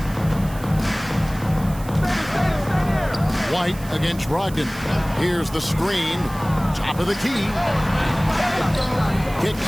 White against Brogdon. Here's the screen. Top of the key.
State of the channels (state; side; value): noise; right; hiss, 18 dB below the sound